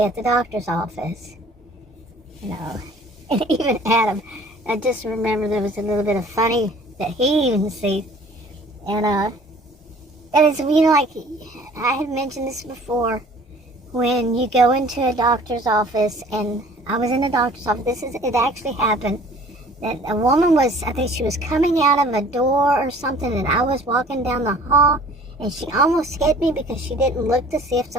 at the doctor's office. You know, and even Adam, I just remember there was a little bit of funny that he even sees. And it's, you know, like, I had mentioned this before, when you go into a doctor's office, and I was in a doctor's office, it actually happened, that a woman was, I think she was coming out of a door or something, and I was walking down the hall, and she almost hit me because she didn't look to see if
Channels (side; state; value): both; normal; correlation 0.51